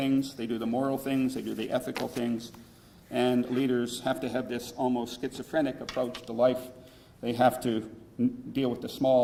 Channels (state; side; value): identical; both; correlation 1.00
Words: they do the moral things, they do the ethical things, and leaders have to have this almost schizophrenic approach to life. They have to deal with the